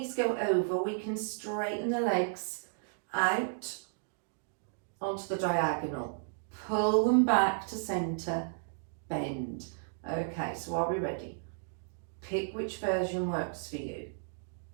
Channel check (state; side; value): silent; left; digital silence